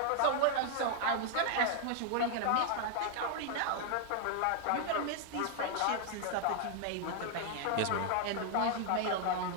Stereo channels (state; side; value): different; both; correlation 0.00